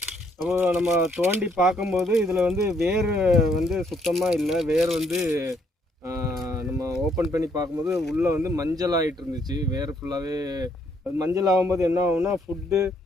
அப்போ நம்ம தோண்டி பார்க்கும்போது இதில் வந்து வேர் வந்து சுத்தமாக இல்லை. வேர் வந்து நம்ம ஓப்பன் பண்ணி பார்க்கும்போது உள்ளே வந்து மஞ்சள் ஆகிட்டு இருந்துச்சு. வேர் ஃபுல்லாகவே அது மஞ்சள் ஆகும்போது என்ன ஆகும்னா ஃபுட்டு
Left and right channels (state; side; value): normal; both; correlation 0.70